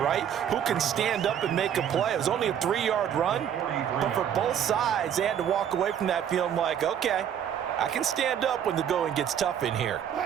right? Who can stand up and make a play. It was only a 3-yard run, but for both sides, they had to walk away from that feeling like, okay, I can stand up when the going gets tough in here.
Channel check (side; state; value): left; quieter; 9.2 dB